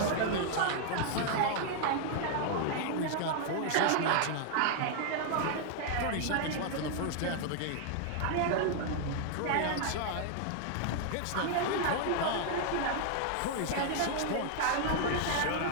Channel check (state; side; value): different; both; correlation 0.00